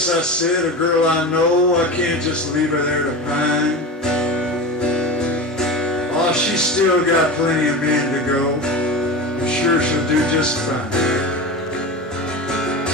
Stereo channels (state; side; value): normal; both; correlation 0.27